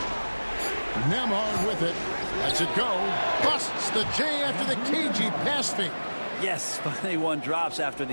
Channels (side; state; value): both; inverted; correlation -1.00